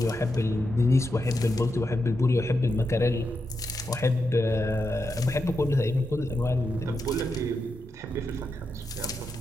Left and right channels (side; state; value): both; normal; correlation 0.86